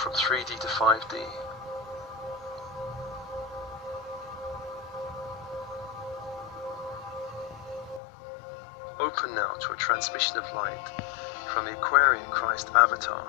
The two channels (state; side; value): drops out; right; at 8.0 s